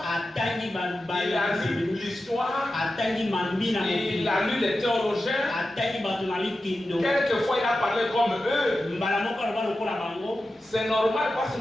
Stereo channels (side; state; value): both; normal; correlation 0.92